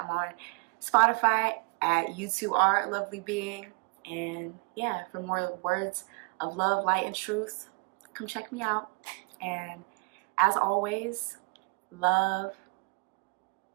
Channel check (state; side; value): quieter; left; 32.3 dB